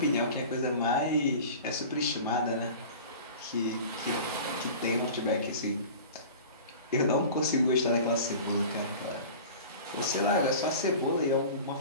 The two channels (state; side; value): inverted; both; correlation -0.38